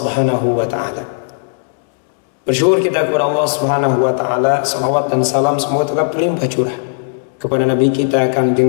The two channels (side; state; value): right; silent; 69 dB below the other